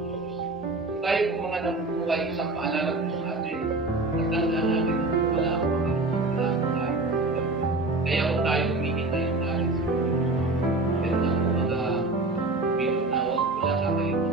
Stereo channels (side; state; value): left; quieter; 3.1 dB